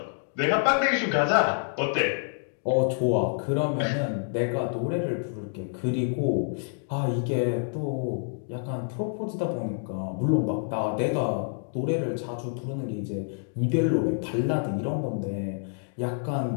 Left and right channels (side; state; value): right; silent; digital silence